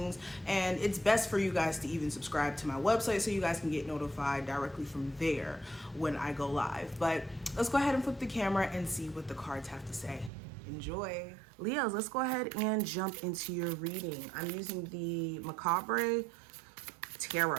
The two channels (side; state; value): left; drops out; at 10.3 s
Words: And it's best for you guys to even subscribe to my website so you guys can get notified directly from there when I go live. But let's go ahead and flip the camera and see what the cards have to say. Enjoy. Leos, let's go ahead and jump into your reading. I'm using the Macabre